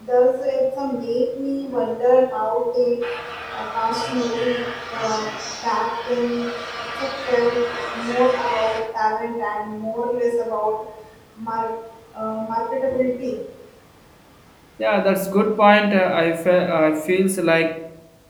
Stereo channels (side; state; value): both; identical; correlation 1.00